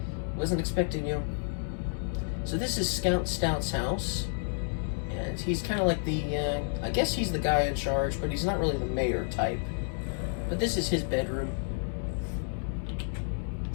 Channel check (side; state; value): right; silent; digital silence